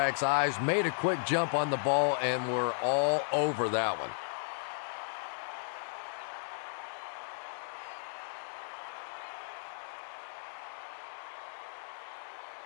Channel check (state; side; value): silent; right; digital silence